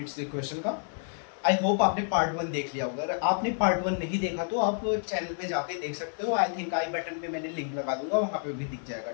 equation का। आई होप आपने पार्ट वन देख लिया होगा। अगर आपने पार्ट वन नहीं देखा तो आप चैनल पे जाके देख सकते हो। आई थिंक आई बटन पे मैंने लिंक लगा दूंगा, वहां पे भी दिख जाएगा।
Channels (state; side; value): silent; right; 58 dB below the other